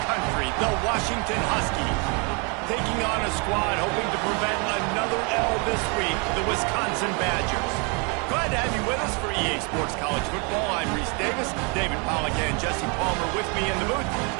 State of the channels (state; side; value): quieter; left; 33.3 dB